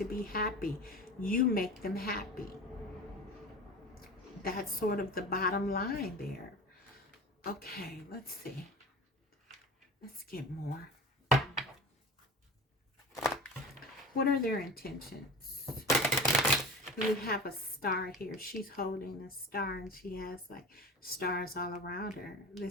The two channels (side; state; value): both; normal; correlation 0.33